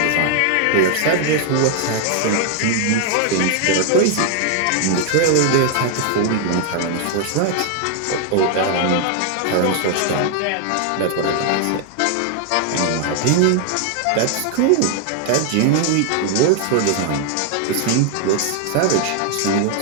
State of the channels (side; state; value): both; different; correlation 0.00